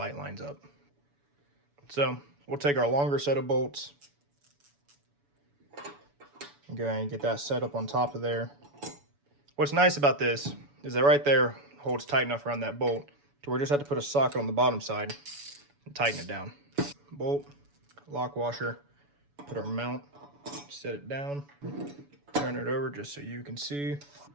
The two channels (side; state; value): left; late; 7.0 ms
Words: lines up. So we'll take our longer set of bolts and go ahead and get that set up on top of there. What's nice about this is that right there holds tight enough around that bolt to where we just have to put a socket on the bottom side and tighten it down. Bolt, lock washer, put our mount, set it down, turn it over just so you can see.